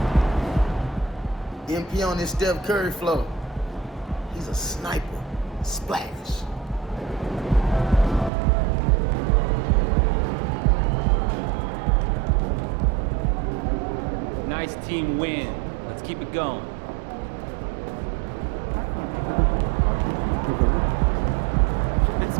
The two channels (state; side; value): drops out; left; at 8.3 s